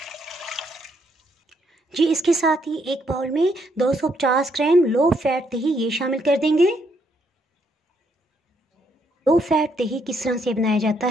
जी, इसके साथ ही एक बाउल में 250 ग्राम लो फैट दही ये शामिल कर देंगे। लो फैट दही किस तरह से बनाया जाता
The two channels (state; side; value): normal; both; correlation 0.73